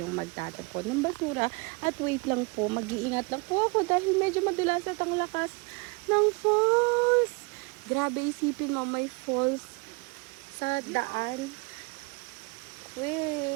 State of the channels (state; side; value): quieter; left; 29.4 dB